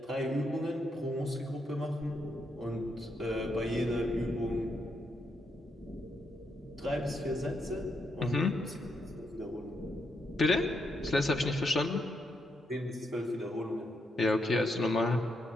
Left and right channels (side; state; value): both; normal; correlation 0.80